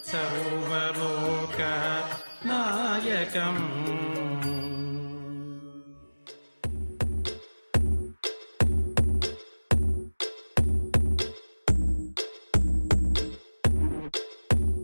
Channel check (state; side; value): inverted; both; correlation -1.00